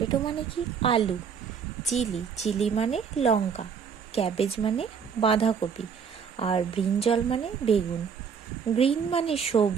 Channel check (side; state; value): left; quieter; 6.6 dB